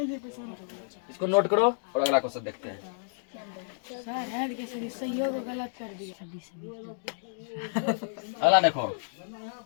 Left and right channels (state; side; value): silent; right; digital silence